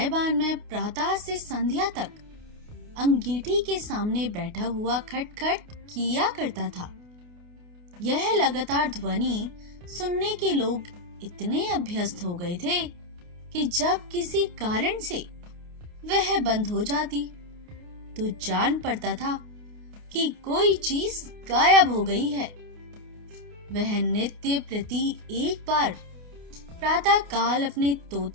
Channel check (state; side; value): late; left; 28 ms